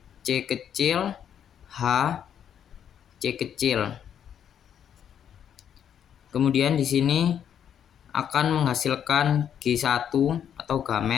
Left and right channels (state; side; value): quieter; right; 9.0 dB